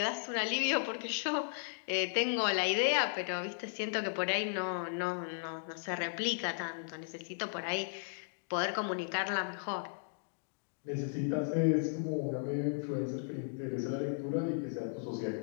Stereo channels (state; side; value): silent; right; digital silence